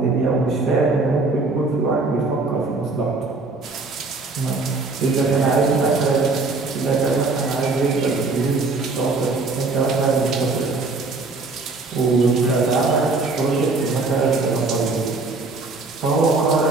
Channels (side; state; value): left; quieter; 3.6 dB